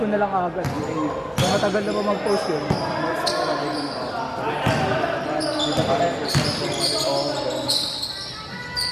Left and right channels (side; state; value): both; identical; correlation 1.00